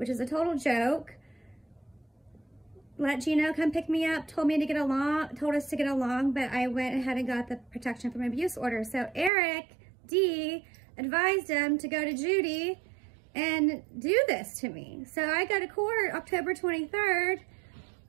is a total joke, let Gino come pick me up, told us to get along, but I went ahead and got the protection from abuse order. So Eric D advised him to go to Judy and do this to me. So I go to court October 23rd,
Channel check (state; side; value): drops out; left; at 9.3 s